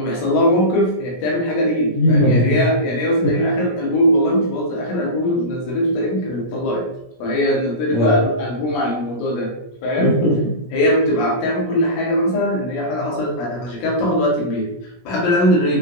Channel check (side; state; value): right; late; 17 ms